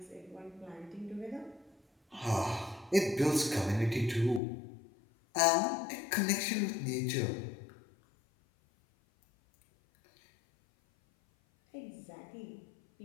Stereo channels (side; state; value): right; drops out; at 4.4 s